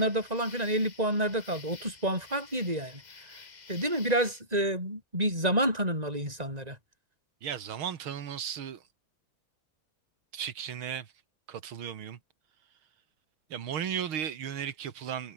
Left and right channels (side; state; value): left; late; 1.9 ms